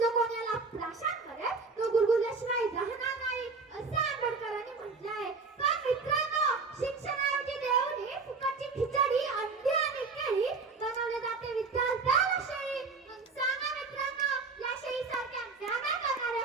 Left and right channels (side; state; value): left; quieter; 4.4 dB